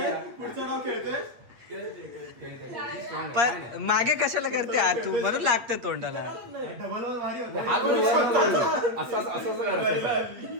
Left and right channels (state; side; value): late; left; 8.4 ms